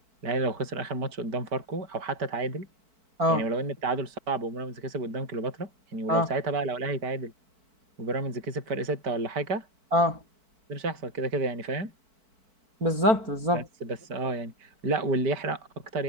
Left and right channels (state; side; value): late; left; 4.5 ms